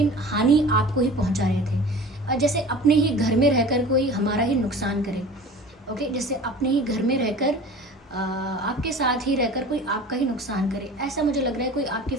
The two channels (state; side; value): normal; both; correlation 0.40